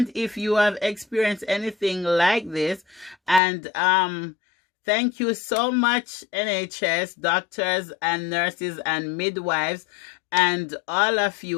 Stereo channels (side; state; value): right; drops out; at 3.4 s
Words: if you have experienced anything like this. And thank you so much, NHS, doctors and nurses and midwives, and all of